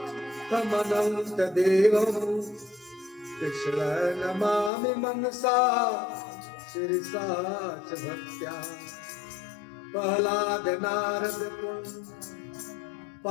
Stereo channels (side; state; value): right; drops out; at 4.7 s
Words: कृष्ण नमामि मनसा शिरसा च भक्त्या। प्रह्लाद नारद